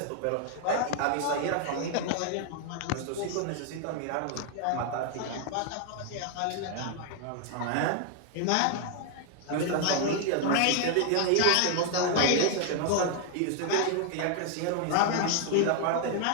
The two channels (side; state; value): both; different; correlation 0.00